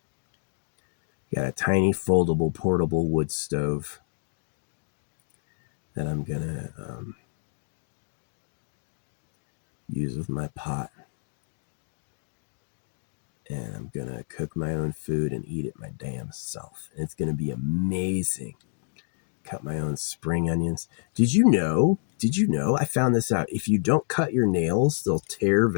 Got a tiny foldable portable wood stove that I'm gonna use with my pot. And I'm gonna cook my own food and eat it my damn self. And it's gonna be amazing. Cut my own spring onions. Did you know? I found this out. If you don't cut your nails, they'll tear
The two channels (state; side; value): silent; right; digital silence